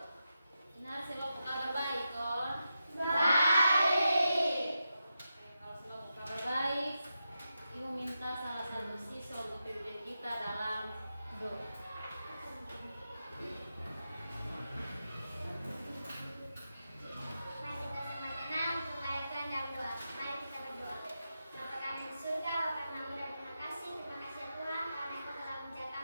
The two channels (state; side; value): inverted; both; correlation -0.88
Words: Benar, selalu kabar baik, kon? Baik. Kalau selalu kabar baik, Ibu minta salah satu siswa untuk pimpin kita dalam doa. Mari kita sama tenang untuk mengaitkan dalam doa. Mari kita berdoa. Bapa kami di surga, Bapa kami dan terima kasih ya Tuhan karena Engkau telah menjaga